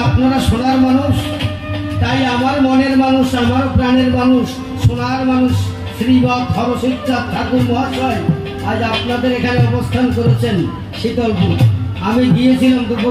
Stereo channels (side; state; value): both; identical; correlation 1.00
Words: আপনারা সোনার মানুষ, তাই আমার মনের মানুষ, আমার প্রাণের মানুষ, সোনার মানুষ শ্রীবৎ হরসিত ঠাকুর মহাশয় আজ আপনাদের এখানে অবস্থান করেছেন শীতলপুর। আমি গিয়েছিলাম